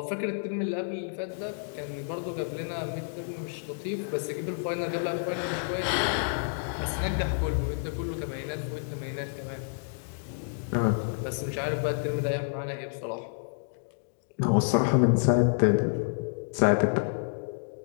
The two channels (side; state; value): right; silent; digital silence